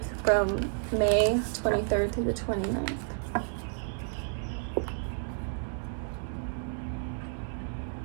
from May 23rd through the 29th.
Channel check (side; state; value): left; silent; digital silence